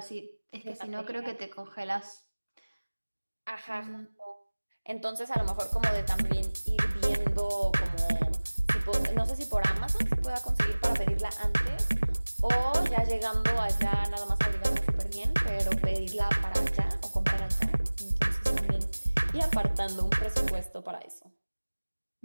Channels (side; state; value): both; inverted; correlation -1.00